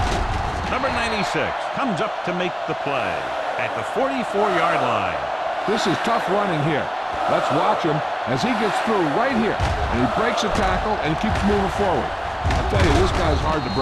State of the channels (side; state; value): both; identical; correlation 1.00